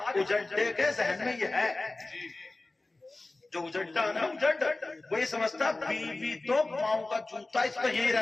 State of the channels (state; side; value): quieter; right; 3.1 dB